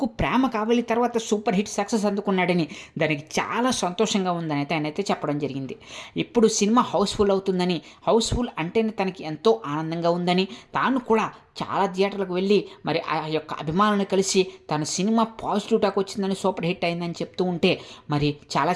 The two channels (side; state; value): both; identical; correlation 1.00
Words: 'ప్రేమ కావలి' తర్వాత సూపర్ హిట్ సక్సెస్ అందుకున్నాడని, దానికి చాలా సంతోషంగా ఉందని అయితే ఆయనైతే చెప్పడం జరిగింది. ఇప్పుడు సినిమా హౌస్ఫుల్ అవుతుందని, హౌస్ఫుల్ అంటేనే తనకి ఎంతో ఆనందంగా ఉందని, తాను కూడా చాలా థియేటర్లకు వెళ్ళి మరి ఆ యొక్క అభిమానులను కలిసి తన సినిమా పాజిటివ్ టాక్ వచ్చిందని, సూపర్ హిట్ అయిందని చెప్తూ ఉంటే మరి చాలా